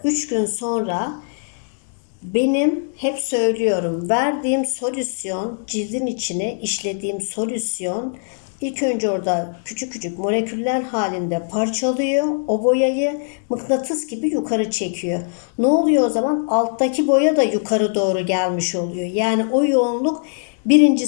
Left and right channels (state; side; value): silent; right; digital silence